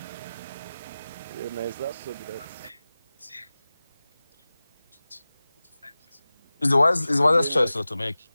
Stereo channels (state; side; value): inverted; both; correlation -0.97